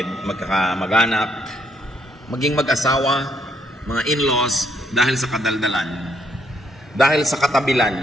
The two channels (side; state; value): both; normal; correlation 0.71